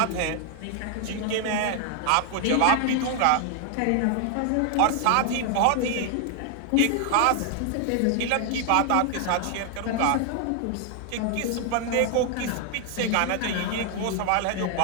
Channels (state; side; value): different; both; correlation 0.00